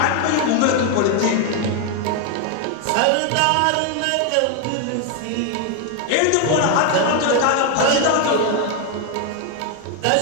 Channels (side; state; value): both; different; correlation 0.01